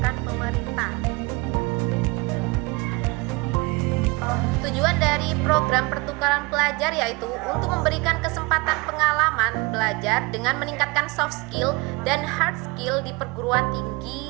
pemerintah. Tujuan dari program pertukaran pelajar yaitu untuk memberikan kesempatan pengalaman belajar dengan meningkatkan soft skill dan hard skill di perguruan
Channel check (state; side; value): quieter; left; 25.6 dB